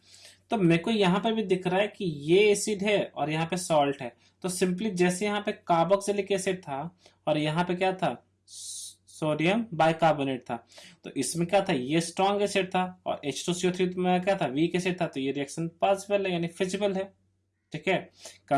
तो मेरे को यहाँ पर भी दिख रहा है कि ये एसिड है और यहाँ पे सॉल्ट है। तो सिंपली जैसे यहाँ पे कार्बोक्सिलिक एसिड था और यहाँ पे क्या था, सोडियम बाइकार्बोनेट था, तो इसमें क्या था, ये स्ट्रॉन्ग एसिड था और H2CO3 में क्या था, वीक एसिड था। तो ये रिएक्शन पॉसिबल है यानी फिजिबल है, ठीक है।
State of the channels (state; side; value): identical; both; correlation 1.00